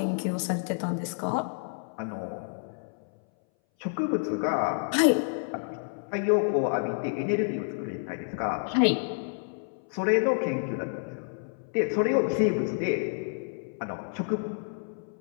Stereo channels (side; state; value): right; silent; 59 dB below the other